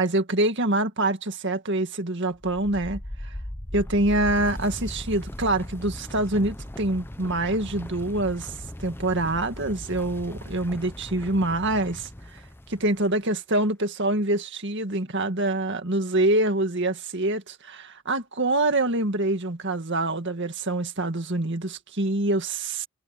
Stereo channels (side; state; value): both; normal; correlation 0.17